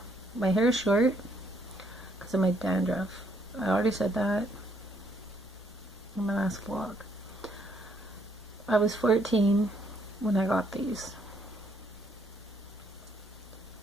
My hair is short because of my dandruff. I already said that in my last vlog. I was 14 when I got these.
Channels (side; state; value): both; normal; correlation 0.69